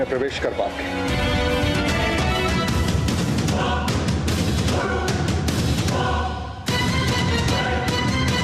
प्रवेश कर पाओगे।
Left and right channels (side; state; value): both; identical; correlation 1.00